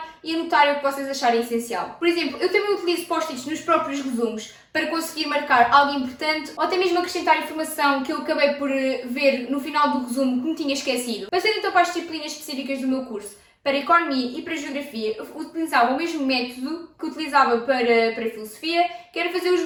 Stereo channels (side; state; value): both; identical; correlation 1.00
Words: e anotarem o que vocês acharem essencial. Por exemplo, eu também utilizo post-its nos próprios resumos para conseguir marcar algo importante ou até mesmo acrescentar informação que eu acabei por ver no final do resumo que me tinha esquecido. Passando então para as disciplinas específicas do meu curso. Para Economia e para Geografia, eu utilizava o mesmo método que utilizava para Filosofia, que era fazer os